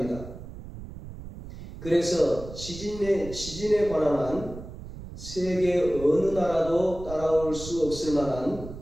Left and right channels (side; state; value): right; noise; rumble, 12 dB below the sound